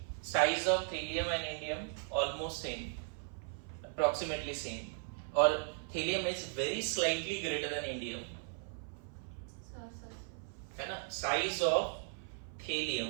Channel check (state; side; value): silent; left; 53 dB below the other